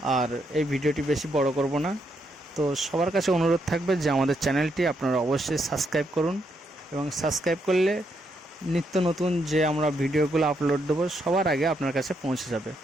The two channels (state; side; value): normal; both; correlation 0.78